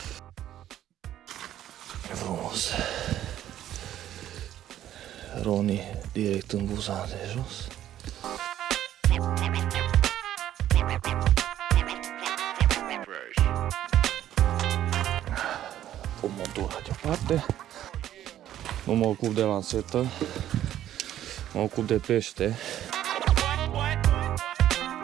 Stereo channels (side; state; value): left; quieter; 12.0 dB